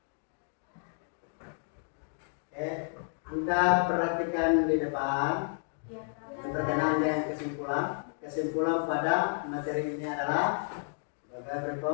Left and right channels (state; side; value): silent; right; digital silence